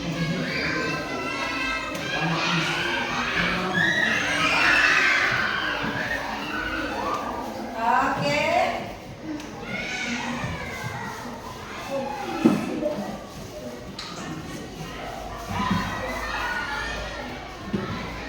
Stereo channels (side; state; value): both; identical; correlation 1.00